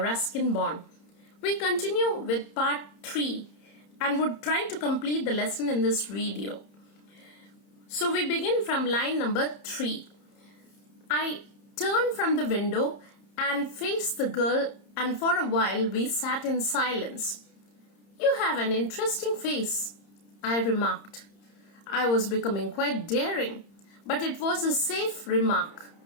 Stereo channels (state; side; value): late; right; 30 ms